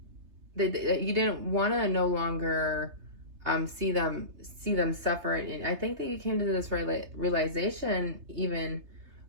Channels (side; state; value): left; late; 3.3 ms